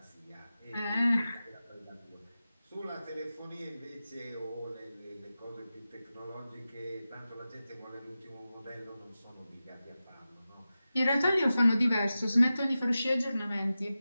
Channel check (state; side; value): inverted; both; correlation -0.94